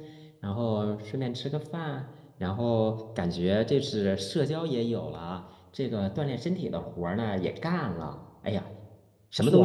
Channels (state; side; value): identical; both; correlation 1.00